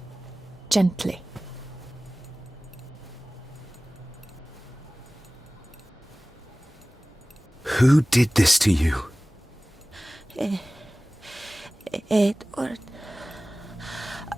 Gently. Who did this to you? Edward.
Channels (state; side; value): normal; both; correlation 0.98